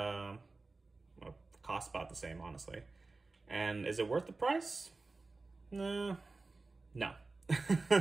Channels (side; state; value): left; quieter; 3.6 dB